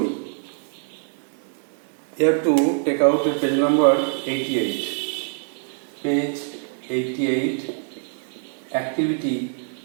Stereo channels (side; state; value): left; silent; 63 dB below the other